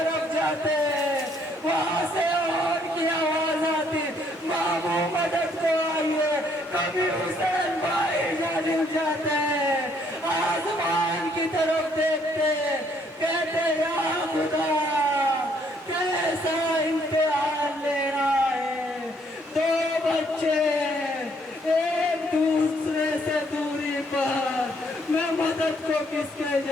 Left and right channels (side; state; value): both; normal; correlation 0.67